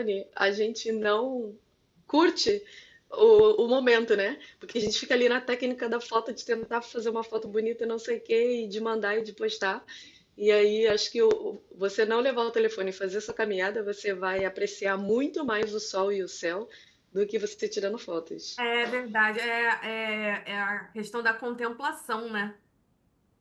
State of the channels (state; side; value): identical; both; correlation 1.00